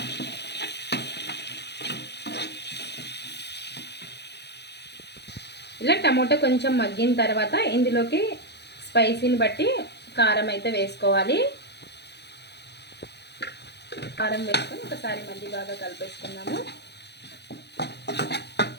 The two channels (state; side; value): late; right; 0.49 ms